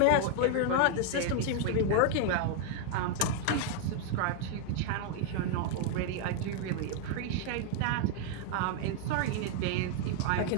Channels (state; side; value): different; both; correlation 0.00